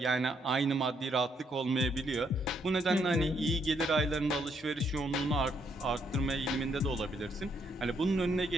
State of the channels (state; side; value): normal; both; correlation 0.73